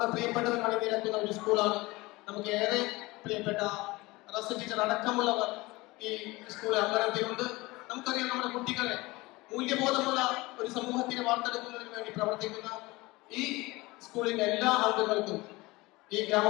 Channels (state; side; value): quieter; right; 21.7 dB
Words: പ്രിയപ്പെട്ടവർ അണിനിരക്കുന്ന ഒരു സ്കൂളാണ്. നമുക്ക് ഏറെ പ്രിയപ്പെട്ട റസ് ടീച്ചർ അടക്കമുള്ളവർ ഈ സ്കൂൾ അംഗനത്തിലുണ്ട്. നമുക്കറിയാം, നമ്മുടെ കുട്ടികളെ മൂല്യബോധമുള്ള ഒരു സമൂഹത്തിനെ വാർത്തെടുക്കുന്നതിന് വേണ്ടി പ്രവർത്തിക്കുന്ന ഈ സ്കൂളിന്റെ എല്ലാ അംഗങ്ങൾക്കും ഈ